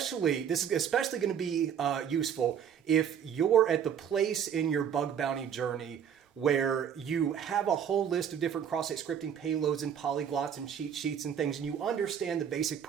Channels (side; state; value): left; quieter; 8.4 dB